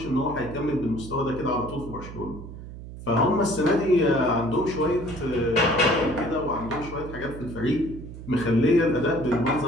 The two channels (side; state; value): right; noise; hum, 12 dB below the sound